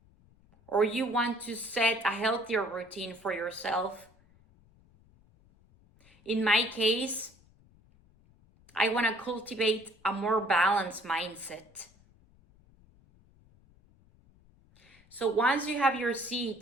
Or you want to set a healthier routine for yourself. In my case, I want to cultivate a more balanced mindset. So once you have your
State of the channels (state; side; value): noise; left; rumble, 29 dB below the sound